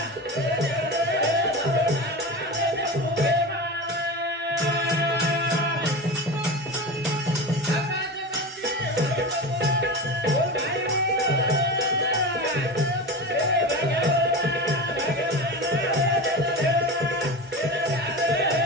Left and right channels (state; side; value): normal; both; correlation 0.26